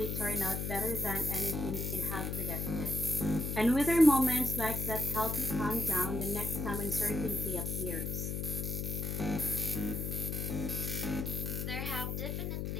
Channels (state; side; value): noise; left; hum, 2 dB below the sound